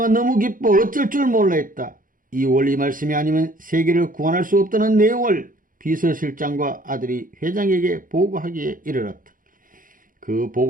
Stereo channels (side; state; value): left; late; 0.40 ms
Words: 너무 기뻐 어쩔 줄 몰라 했다. 이 원리 말씀이 아니면 세계를 구원할 수 없다는 내용을 비서실장과 아들이 회장에게 보고하기에 이르렀다. 그